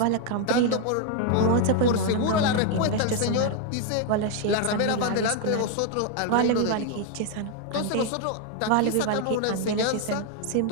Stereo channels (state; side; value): different; both; correlation 0.01